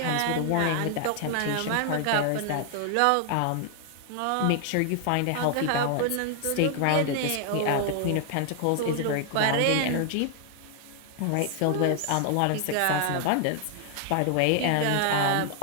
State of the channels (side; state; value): both; different; correlation 0.00